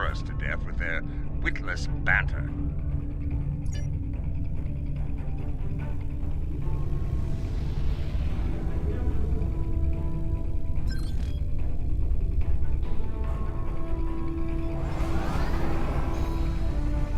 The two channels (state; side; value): identical; both; correlation 1.00